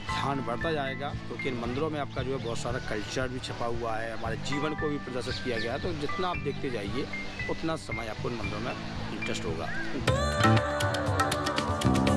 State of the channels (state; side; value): identical; both; correlation 1.00